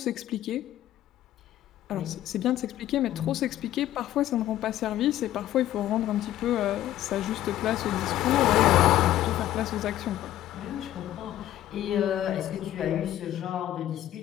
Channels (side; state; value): right; quieter; 13.1 dB